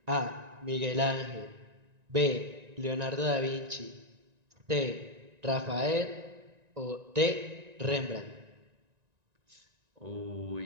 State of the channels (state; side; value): late; left; 1.9 ms